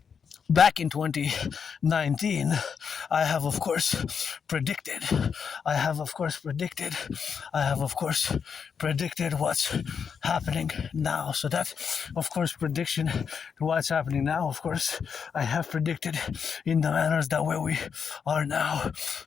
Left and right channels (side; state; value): right; quieter; 6.6 dB